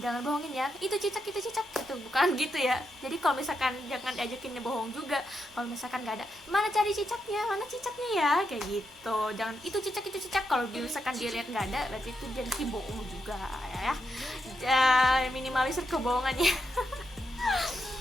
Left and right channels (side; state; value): both; normal; correlation 0.83